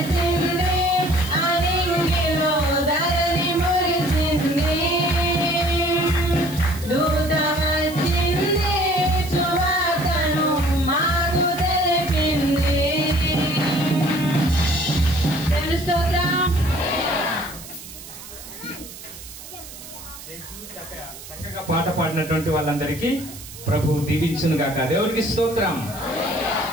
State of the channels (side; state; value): right; noise; hiss, 15 dB below the sound